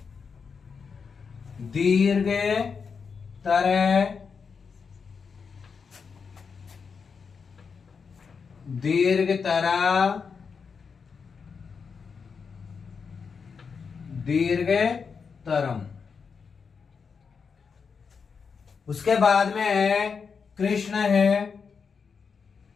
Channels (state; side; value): quieter; right; 5.7 dB